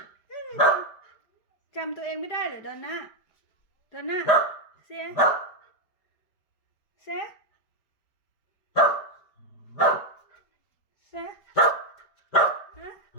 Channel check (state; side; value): late; right; 4.9 ms